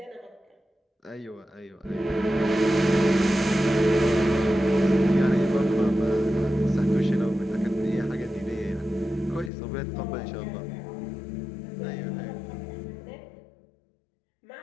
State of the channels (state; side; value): drops out; right; at 9.5 s